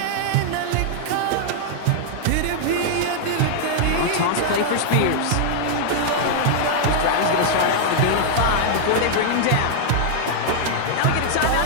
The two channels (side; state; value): both; different; correlation -0.01